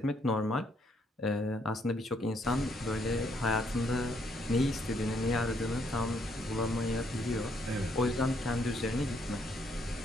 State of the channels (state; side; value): normal; both; correlation 0.71